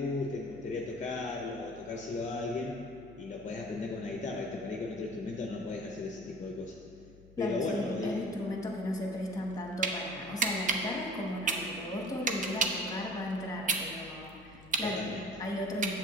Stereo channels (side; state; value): left; noise; hum, 22 dB below the sound